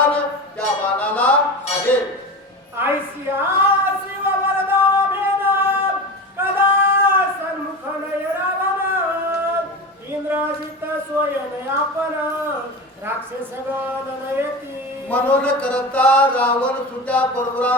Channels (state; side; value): normal; both; correlation 0.27